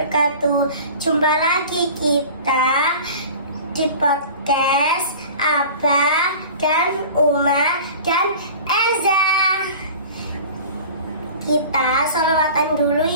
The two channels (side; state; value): both; inverted; correlation -0.40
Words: Jumpa lagi kita di podcast Abah dan Uma dan Eza. Kita sholawatan dulu